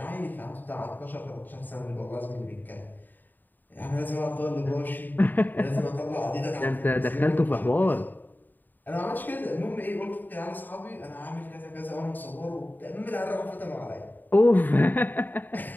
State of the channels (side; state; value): right; late; 0.089 ms